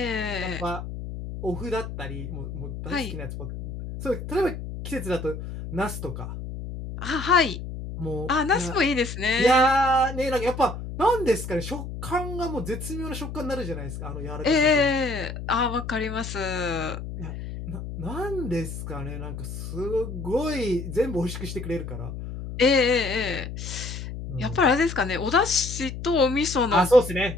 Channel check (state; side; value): noise; left; hum, 8 dB below the sound